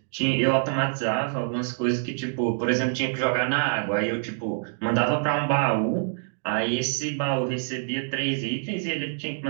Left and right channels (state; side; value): silent; left; digital silence